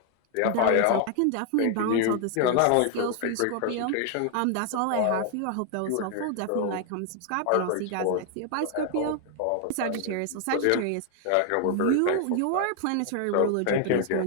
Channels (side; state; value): both; different; correlation 0.00